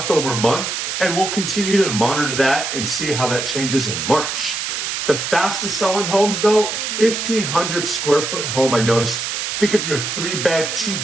over month, and we'll continue to monitor that and see how that changes in March. The fastest selling homes, though, 1,500 square foot home, I noticed. Think of your 3-bed,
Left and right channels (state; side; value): noise; right; hiss, 3 dB below the sound